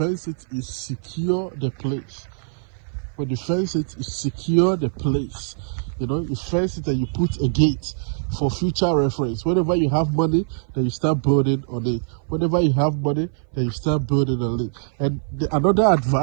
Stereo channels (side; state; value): left; silent; 59 dB below the other